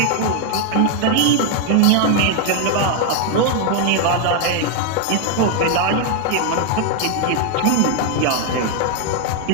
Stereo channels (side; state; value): both; different; correlation 0.00